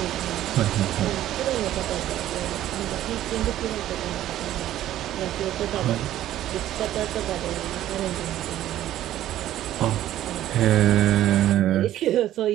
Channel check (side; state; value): left; quieter; 12.9 dB